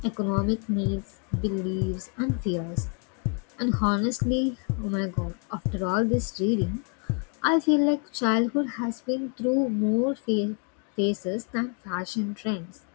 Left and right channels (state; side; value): quieter; right; 38.5 dB